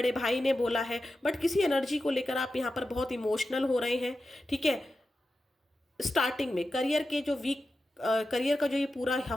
भाई ने बोला है, बट किसी एनर्जी को लेकर आप यहाँ पर बहुत इमोशनल हो रहे हैं। ठीक है, स्टार्टिंग में करियर का जो ये पूरा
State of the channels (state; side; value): normal; both; correlation 0.91